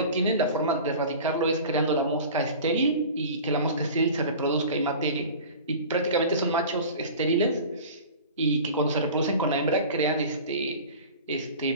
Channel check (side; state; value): both; inverted; correlation -0.38